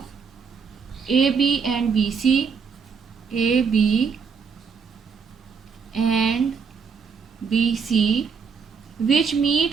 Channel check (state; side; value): quieter; left; 5.9 dB